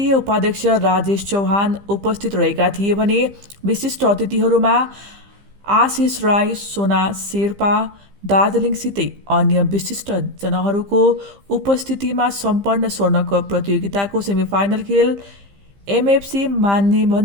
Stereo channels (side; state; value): left; late; 15 ms